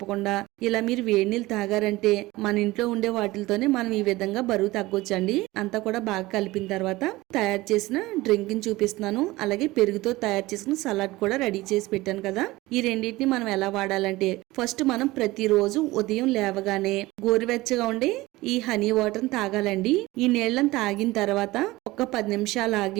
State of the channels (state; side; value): quieter; left; 19.4 dB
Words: ఇలా మీరు వేడి నీళ్ళు తాగారంటే మన ఇంట్లో ఉండే వాటితోనే మనం ఈ విధంగా బరువు తగ్గొచ్చండి. అంతా కూడా బాగా కలిపిన తర్వాత తయారు చేసిన డ్రింక్ ని చూపిస్తున్నాను. అలాగే పెరుగుతో తయారు చేసిన సలాడ్ కూడా రెడీ చేసి పెట్టాను కదా. ఈ రెండింటిని మనం ఎలా వాడాలంటే ఫస్ట్ మనం ప్రతిరోజు ఉదయం లేవగానే గోరువెచ్చగా ఉండే ఈ హనీ వాటర్ తాగాలండి. ఈ నీళ్ళని తాగిన తర్వాత ఒక 10 నిమిషాలు